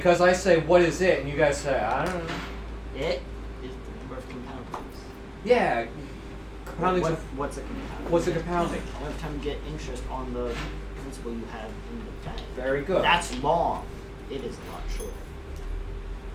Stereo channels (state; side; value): identical; both; correlation 1.00